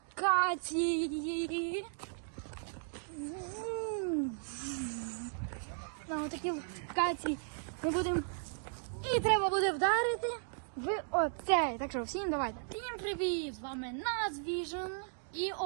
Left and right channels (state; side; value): silent; left; digital silence